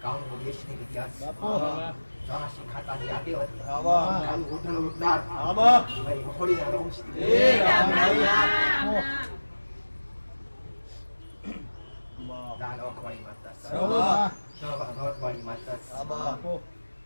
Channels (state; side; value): inverted; both; correlation -1.00